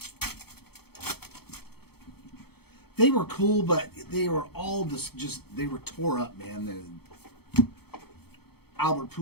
They were cool, but they were all just they were tore up, man. Albert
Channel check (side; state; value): right; late; 0.96 ms